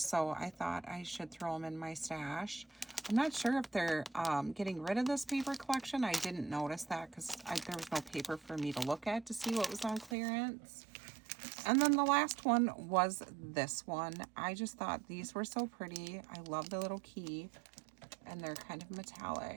I thought I should throw them in my stash. I'm not sure if they're getting rid of this paper collection. I didn't notice that because there was no paper for me to look at to see what was on clearance. And then the last one was this one. I just thought these were so pretty. I love the little key, and they're kind of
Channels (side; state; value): left; drops out; at 10.2 s